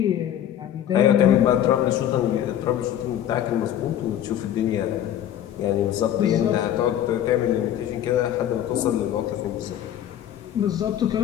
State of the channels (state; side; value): quieter; right; 10.9 dB